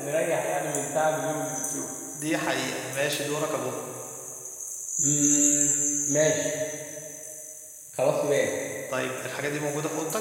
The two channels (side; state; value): both; identical; correlation 1.00